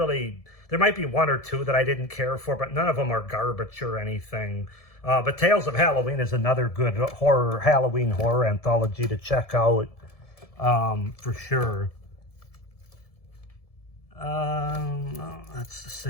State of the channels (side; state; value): right; late; 1.7 ms